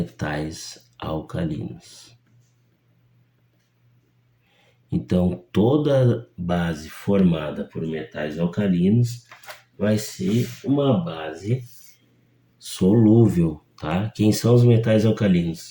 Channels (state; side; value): identical; both; correlation 1.00